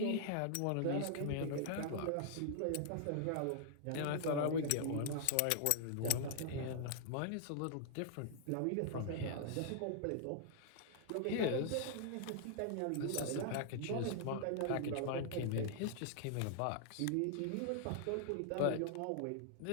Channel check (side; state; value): both; different; correlation -0.01